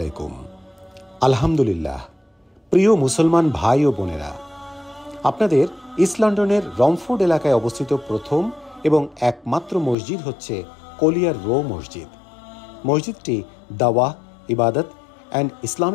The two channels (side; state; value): right; drops out; at 10.0 s